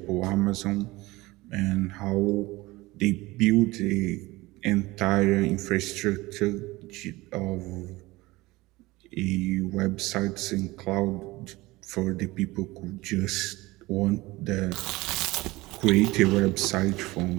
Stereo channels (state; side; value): quieter; left; 20.4 dB